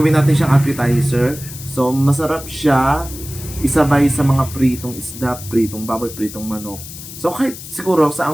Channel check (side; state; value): left; noise; hiss, 13 dB below the sound